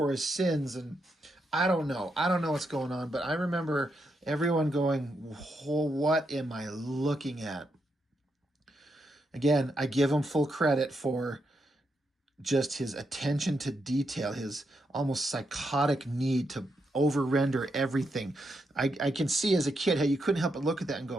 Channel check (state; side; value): normal; both; correlation 0.82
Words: his sins. And I don't know. I don't know what's going on, but I remember everyone going, what am I looking at? Again, I give him full credit for just his attention to detail, his almost psychotic need to over-render everything. I can see as a kid how you couldn't help but look at that and